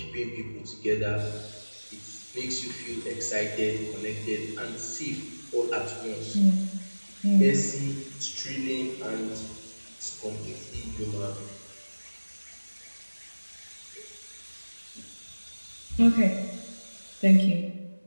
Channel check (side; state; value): both; inverted; correlation -1.00